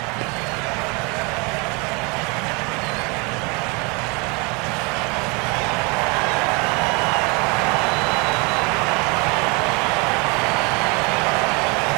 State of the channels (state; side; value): quieter; left; 29.6 dB